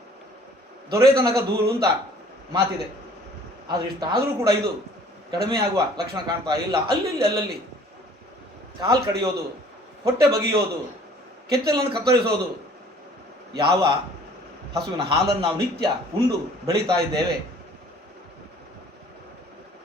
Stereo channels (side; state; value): both; normal; correlation 0.54